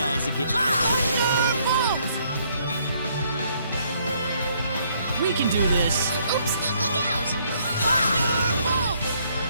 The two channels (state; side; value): inverted; both; correlation -0.68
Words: again. We can do this. Oops, look out!